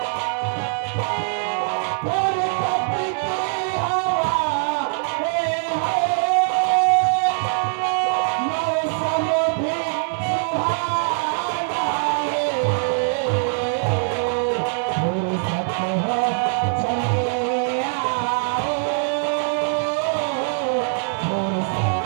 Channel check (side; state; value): left; silent; digital silence